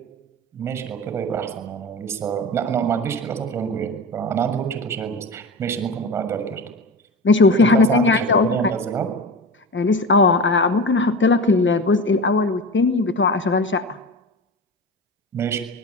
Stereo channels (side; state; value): both; normal; correlation 0.28